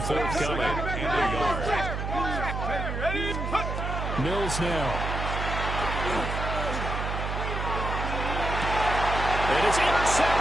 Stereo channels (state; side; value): noise; right; hum, 3 dB below the sound